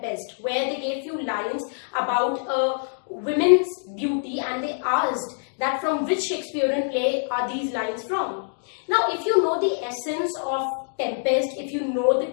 where they gave few lines about a women's beauty, and they asked that from which Shakespearean play are these lines from. Now, if you know the essence of Tempest, if you know the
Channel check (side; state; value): right; silent; digital silence